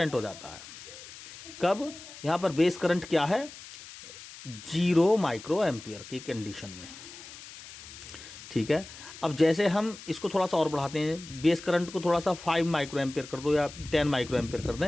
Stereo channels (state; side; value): noise; left; hiss, 15 dB below the sound